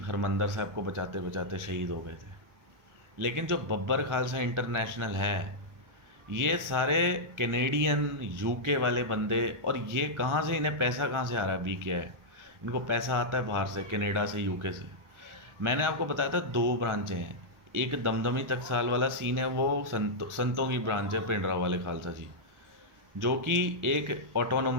हरमंदर साहब को बचाते बचाते शहीद हो गए थे। लेकिन जो बब्बर खालसा इंटरनेशनल है, ये सारे कैनेडियन यूके वाले बंदे, और ये कहाँ से, इन्हें पैसा कहाँ से आ रहा है, बी क्या है, इनको पैसा आता है बाहर से, कनाडा से, यूके से। मैंने आपको बताया था 2 ब्रांचें हैं। एक दमदमी टकसाल वाला सीन है, वो संतों की ब्रांच है, पिंडरा वाले खालसा जी, जो कि एक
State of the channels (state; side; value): late; left; 1.5 ms